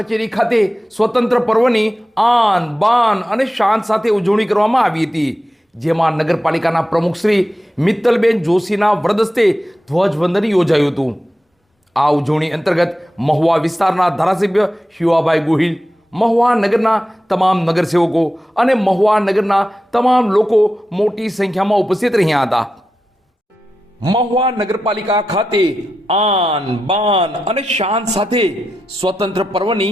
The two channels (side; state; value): both; normal; correlation 0.90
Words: ખાતે સ્વતંત્ર પર્વની આન બાન અને શાન સાથે ઉજવણી કરવામાં આવી હતી, જેમાં નગરપાલિકાના પ્રમુખ શ્રી મિત્તલબેન જોશીના વરદસ્તે ધ્વજવંદન યોજાયું હતું। આ ઉજવણી અંતર્ગત મહુવા વિસ્તારના ધારાસભ્ય શિવાભાઈ ગોહિલ, મહુવા નગરના તમામ નગરસેવકો અને મહુવા નગરના તમામ લોકો મોટી સંખ્યામાં ઉપસ્થિત રહ્યા હતા। મહુવા નગરપાલિકા ખાતે આન બાન અને શાન સાથે સ્વતંત્ર